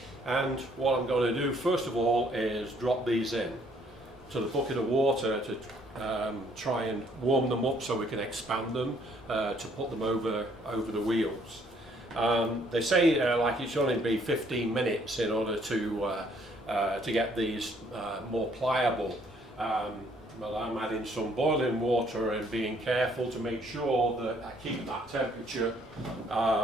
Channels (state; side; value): normal; both; correlation 0.65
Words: And what I'm going to do first of all is drop these in to the bucket of water to try and warm them up so we can expand them to put them over the wheels. They say like it should only be 15 minutes in order to get these more pliable. Well, I'm adding some boiling water and being careful to make sure that I keep that temperature